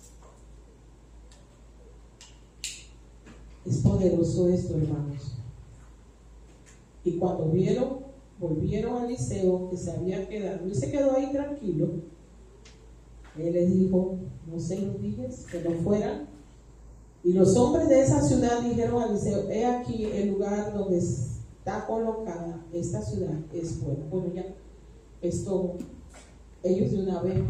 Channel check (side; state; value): both; identical; correlation 1.00